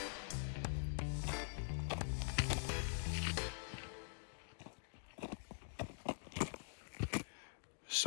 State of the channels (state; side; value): silent; right; digital silence